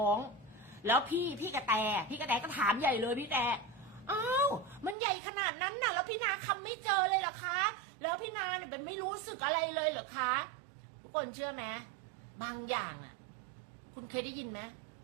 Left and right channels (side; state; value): left; drops out; at 5.0 s